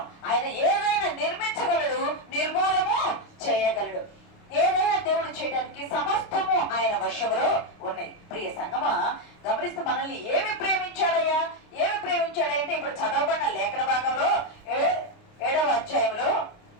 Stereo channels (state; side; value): late; right; 29 ms